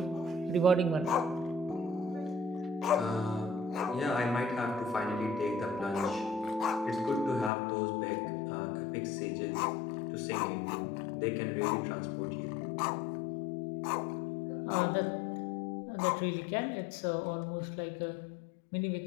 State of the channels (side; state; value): right; drops out; at 7.5 s